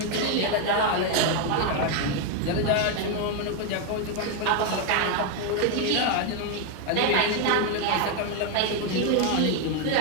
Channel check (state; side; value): different; both; correlation 0.01